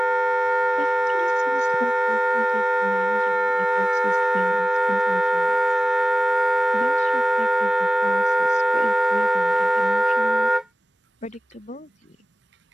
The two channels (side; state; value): both; normal; correlation 0.97